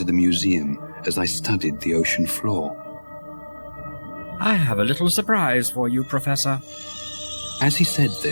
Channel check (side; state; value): both; inverted; correlation -1.00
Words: the museum as I studied the ocean floor. I have a little surprise for you, Professor. As he said